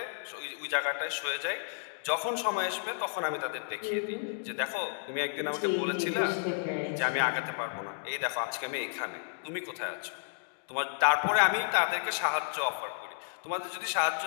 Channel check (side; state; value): right; silent; digital silence